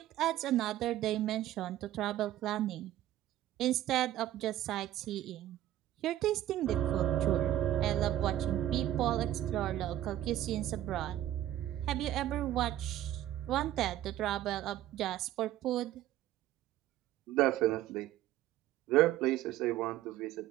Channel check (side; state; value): left; quieter; 13.2 dB